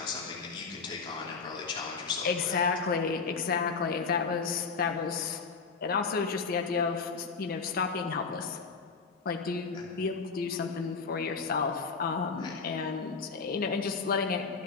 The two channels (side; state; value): right; quieter; 5.0 dB